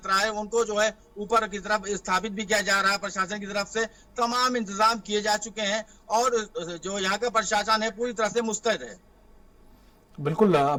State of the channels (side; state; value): both; identical; correlation 1.00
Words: है, उनको जो है ऊपर की तरफ स्थापित भी किया जा रहा है। प्रशासन की तरफ से तमाम इंतजाम किए जा चुके हैं, और जो यहाँ का प्रशासन है पूरी तरह से मुस्तैद है। बिल्कुल,